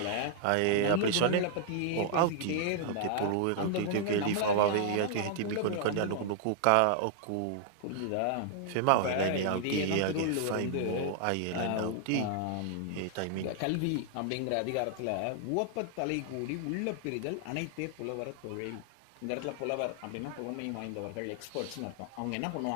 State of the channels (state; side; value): different; both; correlation -0.01